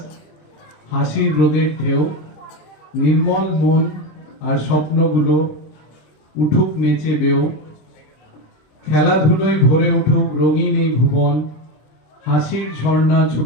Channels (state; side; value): late; right; 26 ms